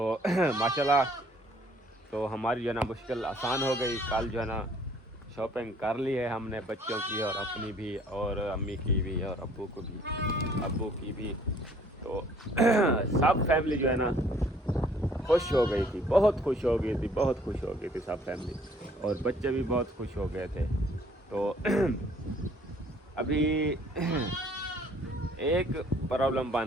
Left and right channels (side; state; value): both; normal; correlation 0.59